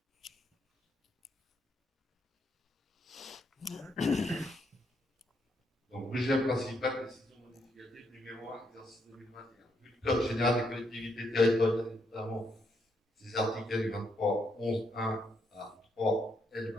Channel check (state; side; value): normal; both; correlation 0.76